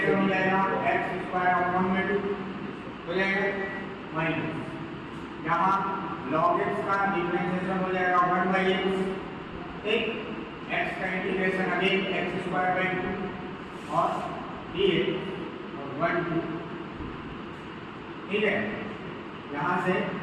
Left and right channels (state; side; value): identical; both; correlation 1.00